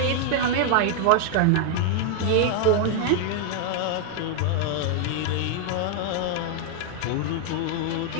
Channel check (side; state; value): both; different; correlation 0.00